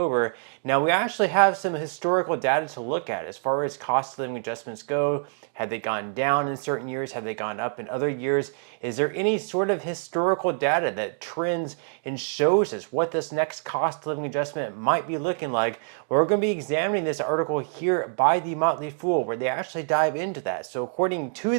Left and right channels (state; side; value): silent; left; 58 dB below the other